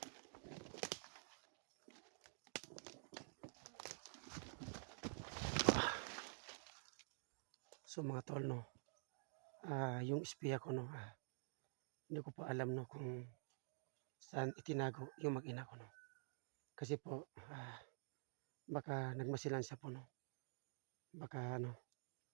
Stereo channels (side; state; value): left; silent; digital silence